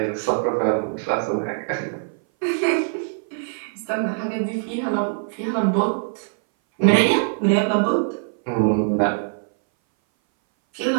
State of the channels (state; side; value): silent; left; 60 dB below the other